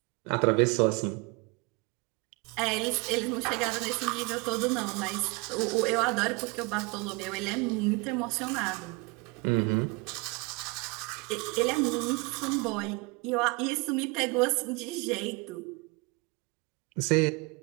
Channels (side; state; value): left; quieter; 27.0 dB